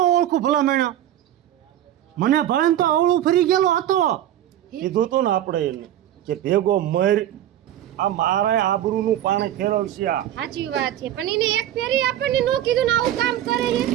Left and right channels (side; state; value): left; quieter; 12.0 dB